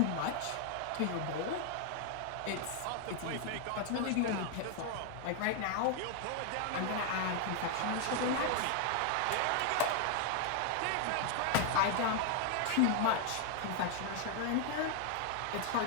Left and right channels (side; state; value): both; different; correlation 0.00